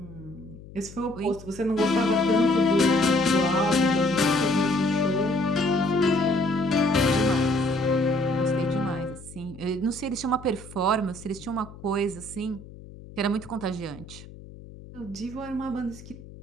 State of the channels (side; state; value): left; noise; hum, 17 dB below the sound